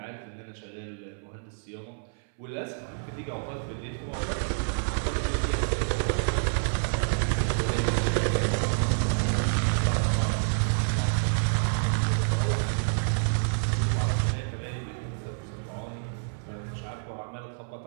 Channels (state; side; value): silent; left; 59 dB below the other